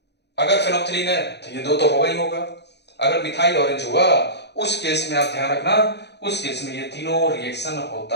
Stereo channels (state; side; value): late; right; 0.50 ms